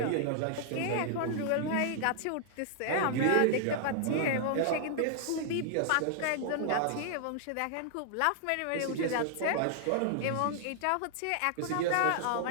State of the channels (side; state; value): both; different; correlation -0.01